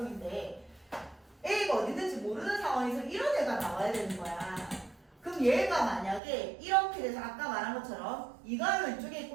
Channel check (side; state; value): left; drops out; at 6.2 s